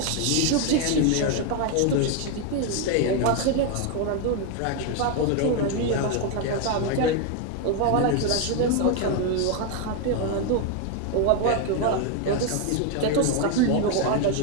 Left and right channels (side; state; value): both; different; correlation 0.01